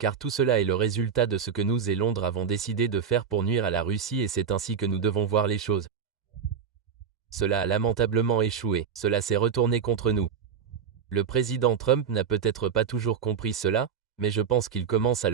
tout cela est le résultat de ce que nous et Londres avons décidé de faire pour nuire à la Russie et c'est ainsi que nous devons voir les choses. Cela a lamentablement échoué, cela s'est retourné contre nous. Le président Trump n'a peut-être pas toujours compris cela, mais je pense qu'il commence à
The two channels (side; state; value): left; quieter; 7.0 dB